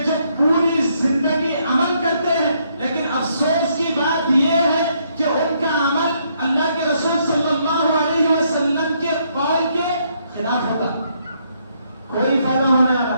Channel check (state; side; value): inverted; both; correlation -0.73